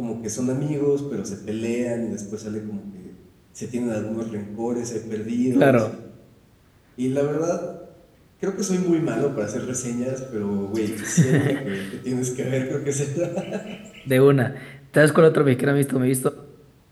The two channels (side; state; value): both; identical; correlation 1.00